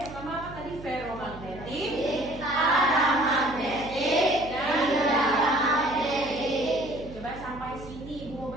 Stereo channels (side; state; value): right; noise; hum, 15 dB below the sound